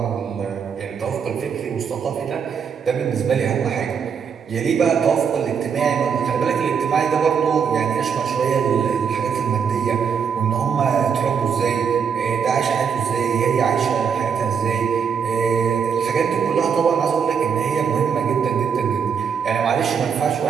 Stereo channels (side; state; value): left; quieter; 6.9 dB